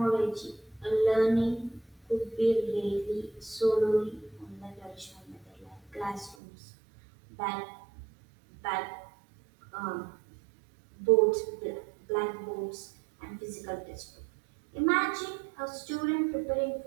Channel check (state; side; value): drops out; left; at 6.4 s